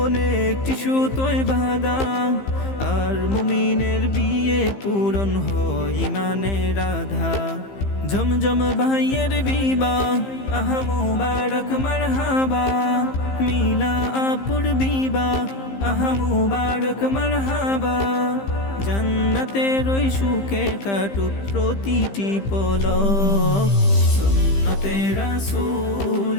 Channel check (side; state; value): right; late; 15 ms